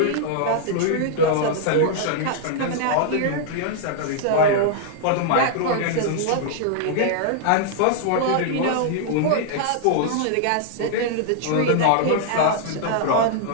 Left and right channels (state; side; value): different; both; correlation -0.01